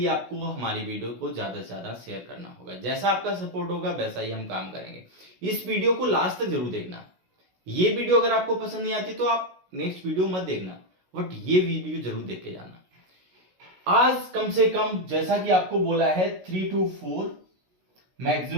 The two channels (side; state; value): left; late; 16 ms